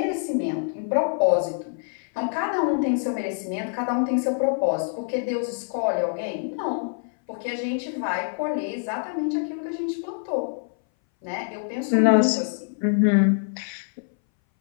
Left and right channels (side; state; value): right; silent; 60 dB below the other